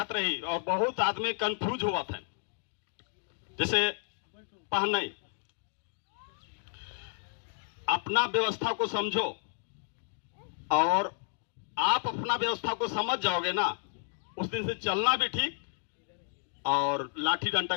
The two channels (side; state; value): right; silent; digital silence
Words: रही और बहुत आदमी कंफ्यूज हुआ थे। जैसे पहने अपना व्यवस्था को समझो और आप अपना व्यवस्था को समझ जाओगे ना, उस दिन से चलना भी ठीक और लाठी डंडा